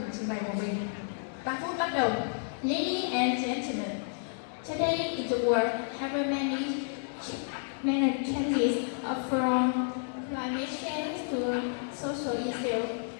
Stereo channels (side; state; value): right; silent; 57 dB below the other